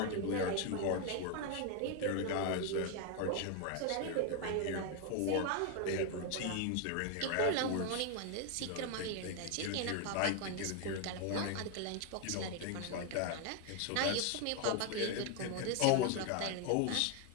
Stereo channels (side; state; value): both; different; correlation 0.01